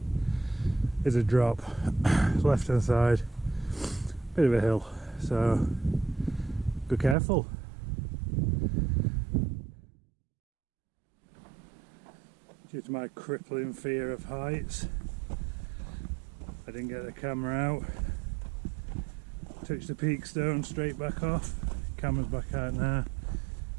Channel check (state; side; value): drops out; left; at 7.2 s